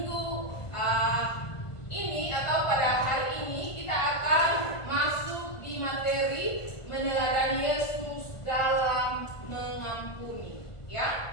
ini atau pada hari ini kita akan masuk di materi meneladani Yesus dalam mengampuni,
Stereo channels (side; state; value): right; late; 1.5 ms